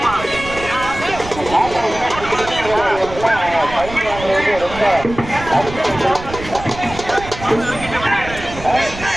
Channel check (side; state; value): right; noise; rumble, 12 dB below the sound